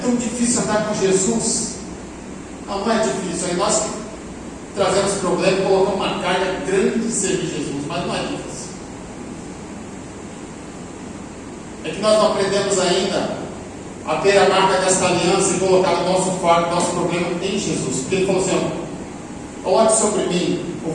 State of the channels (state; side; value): identical; both; correlation 1.00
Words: difícil andar com Jesus. Não é difícil. Aí nós trazemos problema e colocamos uma carga grande de servir Jesus. Mas não é difícil. É que nós não aprendemos ainda a ter a marca dessa aliança e colocar o nosso fardo, o nosso problema em Jesus. Porque ele falou assim: coloque sobre mim o